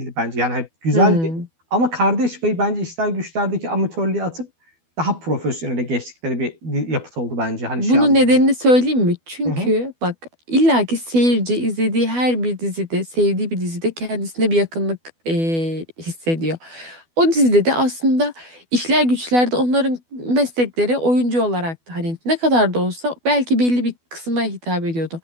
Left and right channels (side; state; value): left; late; 12 ms